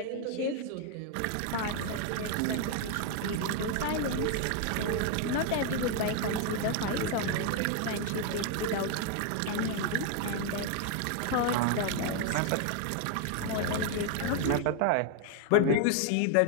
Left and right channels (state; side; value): different; both; correlation 0.01